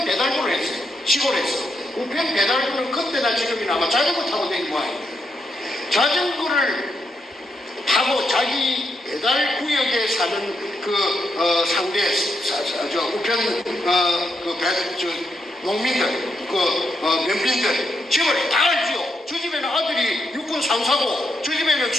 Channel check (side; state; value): both; normal; correlation 0.80